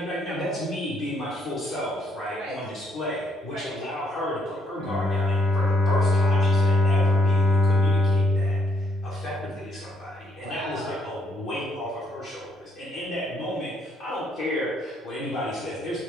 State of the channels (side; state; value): both; normal; correlation 0.70